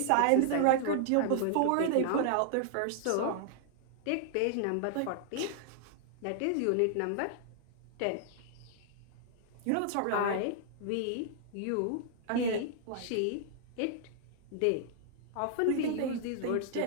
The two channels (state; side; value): different; both; correlation 0.00